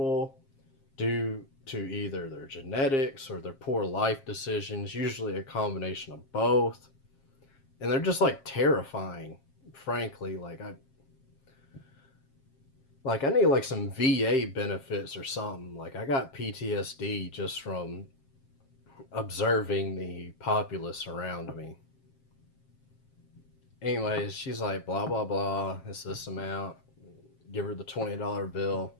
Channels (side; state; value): right; late; 7.5 ms